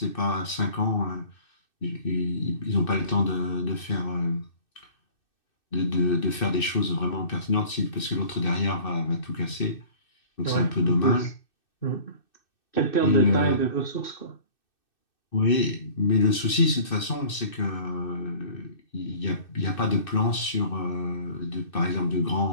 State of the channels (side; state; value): right; late; 2.6 ms